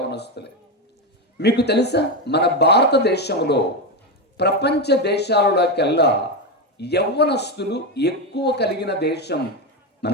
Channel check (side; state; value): both; normal; correlation 0.12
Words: మీకు తెలుసా, మన భారతదేశంలో ప్రపంచ దేశాలలోకెల్లా యవ్వనస్తులు ఎక్కువ కలిగిన దేశం